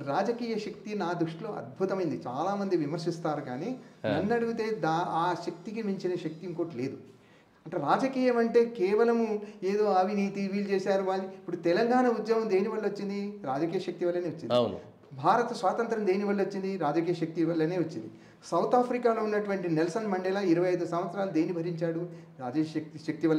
రాజకీయ శక్తి నా దృష్టిలో అద్భుతమైంది. చాలామంది విమర్శిస్తారు, కానీ నన్ను అడిగితే ఆ శక్తికి మించిన శక్తి ఇంకోటి లేదు. అంటే రాజకీయం అంటే కేవలము ఏదో అవినీతి వీళ్ళు చేశారు వాళ్ళు. ఇప్పుడు తెలంగాణ ఉద్యమం దేని వల్ల వచ్చింది? రాజకీయ శక్తి వల్లనే వచ్చింది. భారత స్వాతంత్రం దేని వల్ల వచ్చింది? రాజకీయ శక్తి వల్లనే వచ్చింది. సౌత్ ఆఫ్రికాలో ఉన్నటువంటి నెల్సన్ మండేలా 25 సంవత్సరాలు దేని భరించాడు? రాజకీయ శక్తి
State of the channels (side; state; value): both; identical; correlation 1.00